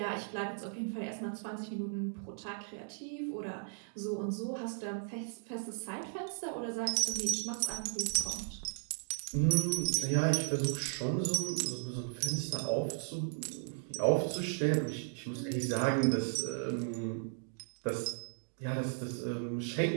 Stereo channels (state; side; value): silent; left; digital silence